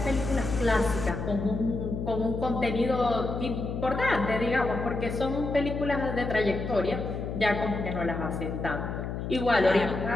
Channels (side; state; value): left; noise; hum, 5 dB below the sound